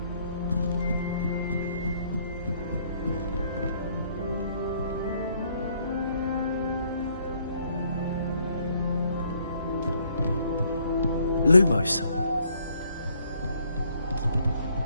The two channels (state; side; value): inverted; both; correlation -0.67